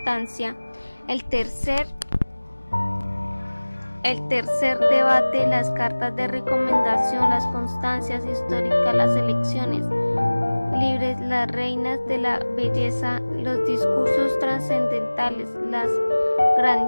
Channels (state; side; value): inverted; both; correlation -1.00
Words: el tercer debate, las cartas de recomendación, las constancias históricas, las elecciones libres, las reinas de la belleza, los discursos trascendentales, las